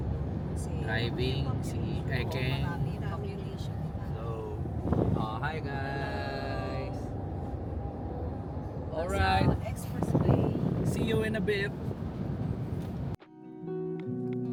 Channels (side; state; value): both; identical; correlation 1.00